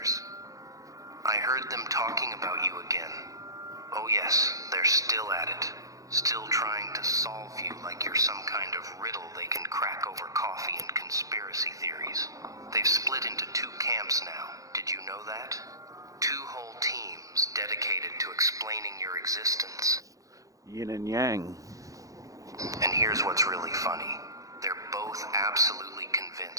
I heard them talking about you again. Oh yes, they're still at it. Still trying to solve you like you're some kind of riddle they can crack over coffee and conspiracy theories. They've split into two camps now. Did you know that? Two whole teams dedicated to explaining your existence. Yin and yang. And here's what's really funny. They're both absolutely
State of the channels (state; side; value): late; left; 0.16 ms